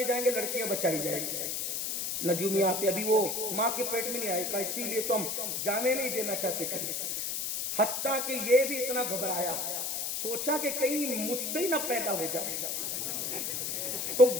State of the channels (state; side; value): noise; left; hiss, 2 dB below the sound